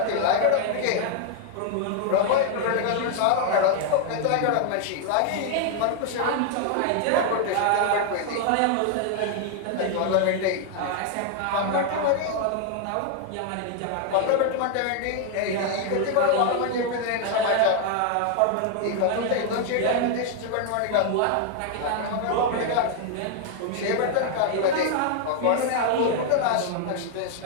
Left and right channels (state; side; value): different; both; correlation 0.00